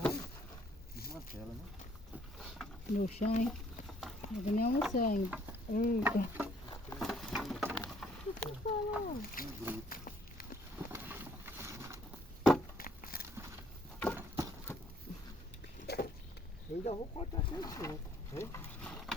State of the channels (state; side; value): normal; both; correlation 0.64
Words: Porque desmantela, né? No chão, hein? Não vou nem almoçar ainda. Eita. Eu ainda vou cortar sem toco. Hein?